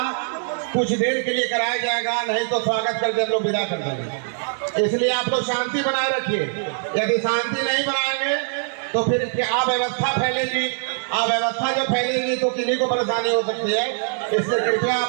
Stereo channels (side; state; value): left; silent; 64 dB below the other